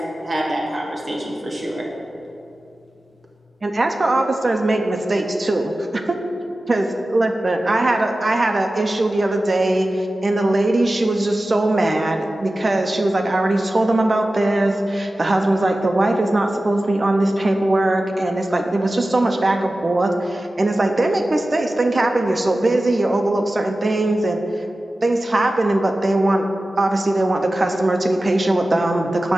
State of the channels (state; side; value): normal; both; correlation 0.95